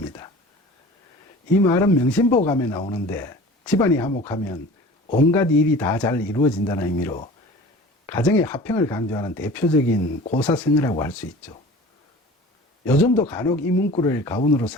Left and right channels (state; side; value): normal; both; correlation 0.41